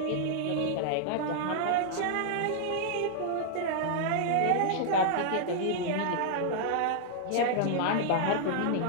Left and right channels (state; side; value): different; both; correlation -0.01